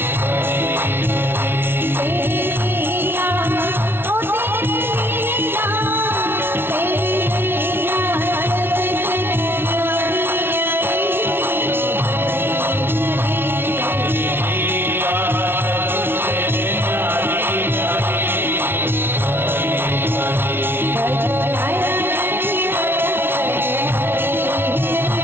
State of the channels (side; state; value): left; late; 0.11 ms